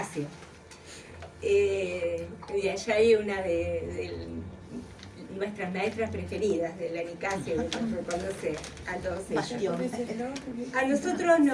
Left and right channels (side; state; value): both; identical; correlation 1.00